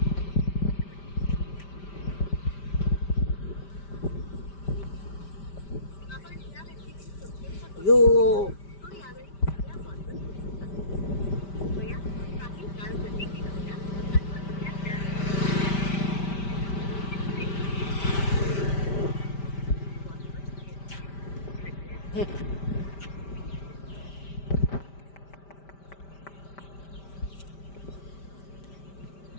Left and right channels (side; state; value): right; late; 5.1 ms